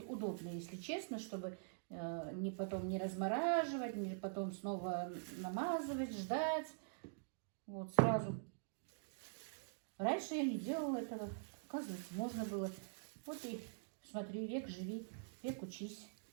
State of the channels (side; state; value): left; silent; digital silence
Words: удобно, если честно, чтобы потом не размораживать, не потом снова намазывать, ждать. Вот сразу. Раньше я не делала этого. Оказывается, можно было. Вот и смотри, век живи, век учись.